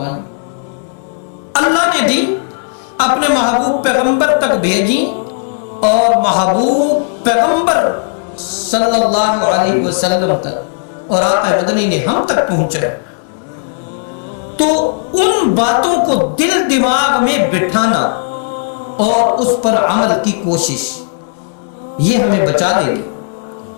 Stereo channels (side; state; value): right; silent; digital silence